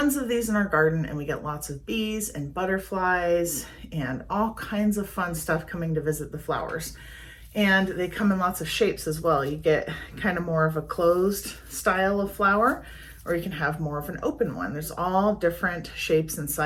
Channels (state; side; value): identical; both; correlation 1.00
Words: of these in our garden and we get lots of bees and butterflies and all kinds of fun stuff coming to visit the flowers. And they come in lots of shapes as well. You get kind of more of a closed style of flower, or you can have more of an open one. There's all different shapes and